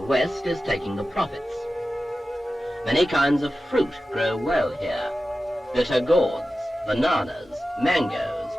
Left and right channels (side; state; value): both; normal; correlation 0.94